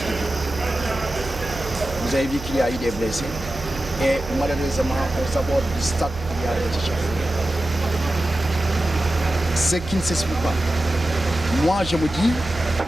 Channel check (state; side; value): noise; right; hum, 12 dB below the sound